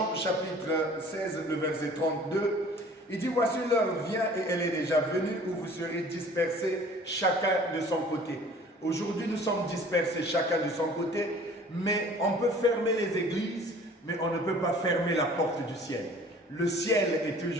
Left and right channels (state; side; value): normal; both; correlation 0.49